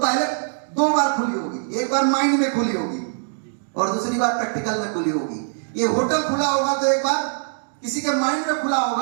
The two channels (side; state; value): left; silent; digital silence